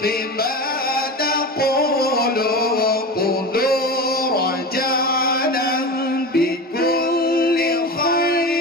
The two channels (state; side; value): normal; both; correlation 0.27